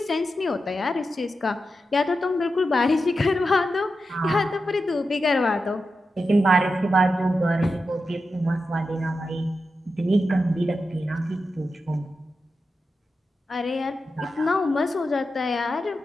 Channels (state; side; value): normal; both; correlation 0.89